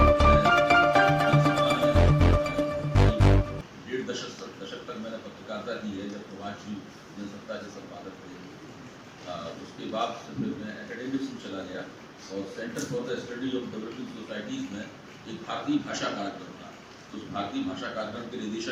डेढ़ दशक तक मैंने पत्रकारिता की है, जब प्रवासी जनसत्ता के संपादक थे। उसके बाद फिर मैं एकेडमिक्स में चला गया और centre for the study of developing societies में एक भारतीय भाषा कार्यक्रम था। तो उस भारतीय भाषा कार्यक्रम के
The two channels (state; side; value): identical; both; correlation 1.00